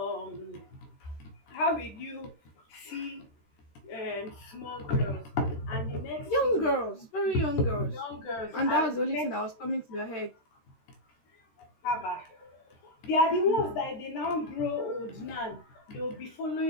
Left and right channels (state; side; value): late; right; 13 ms